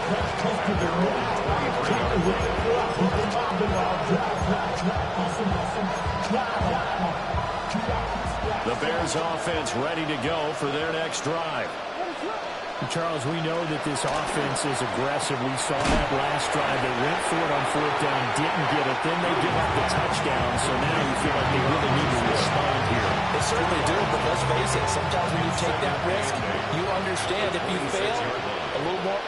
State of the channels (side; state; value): both; identical; correlation 1.00